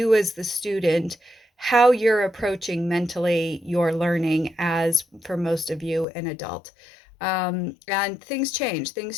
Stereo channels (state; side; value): drops out; right; at 6.1 s